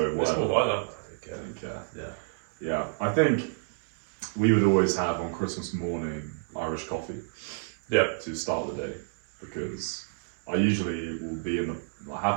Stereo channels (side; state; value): left; silent; 58 dB below the other